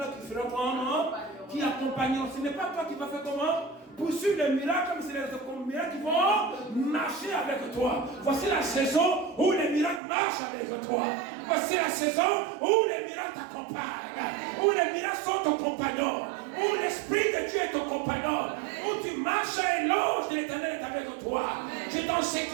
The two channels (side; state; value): left; drops out; at 10.0 s